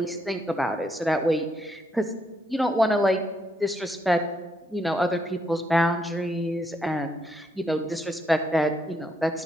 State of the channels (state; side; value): normal; both; correlation 0.76